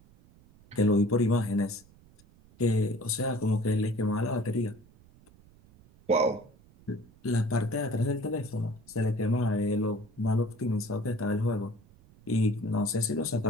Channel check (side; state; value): right; noise; rumble, 27 dB below the sound